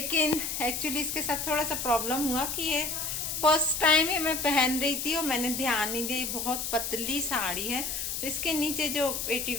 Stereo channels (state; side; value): noise; left; hiss, 3 dB below the sound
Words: एक्चुअली इसके साथ थोड़ा सा प्रॉब्लम हुआ कि ये फर्स्ट टाइम ही मैं पहन रही थी और मैंने ध्यान नहीं दिया। बहुत पतली साड़ी है, इसके नीचे जो